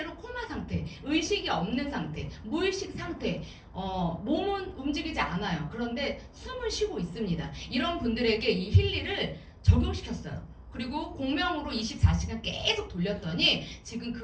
코마 상태, 의식이 없는 상태, 무의식 상태, 몸은 움직이지 않아요. 그런데 숨을 쉬고 있습니다. 이런 분들에게 이 힐리를 적용시켰어요. 그리고 공명으로 24시간 계속 돌렸더니 지금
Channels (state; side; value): identical; both; correlation 1.00